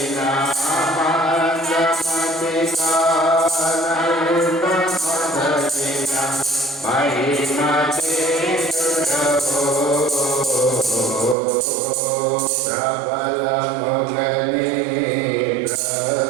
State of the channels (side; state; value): left; drops out; at 11.4 s